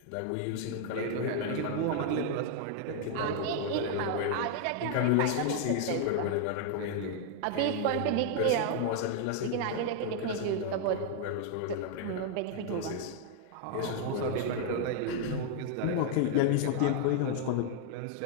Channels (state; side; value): different; both; correlation -0.01